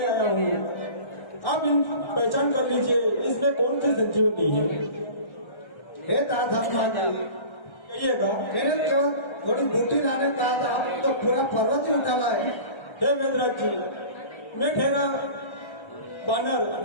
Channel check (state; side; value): late; right; 1.3 ms